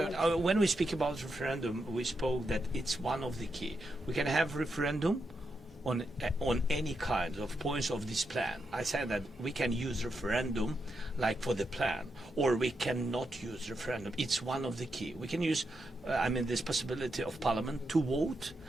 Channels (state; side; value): normal; both; correlation 0.84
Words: When we speak about referendum, we spoke that it's one of the key. We can have referendum on any kind of points of this plan. I said that we can use referendum like for the plan, or we cannot use referendum. It's one of the key. We can use, this possibility of Parliament to vote